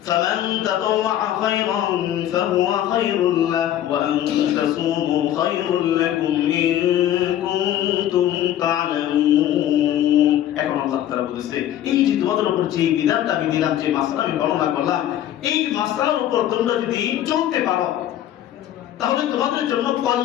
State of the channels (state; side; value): quieter; right; 11.7 dB